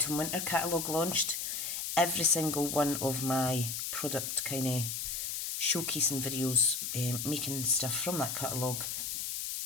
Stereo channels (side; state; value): left; noise; hiss, 3 dB below the sound